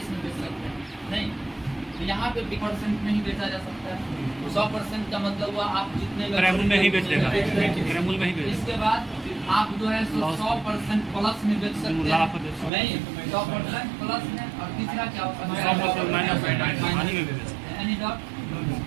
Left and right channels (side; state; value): left; drops out; at 12.7 s